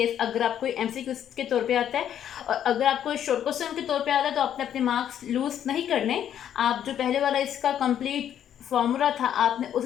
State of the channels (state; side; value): quieter; right; 9.9 dB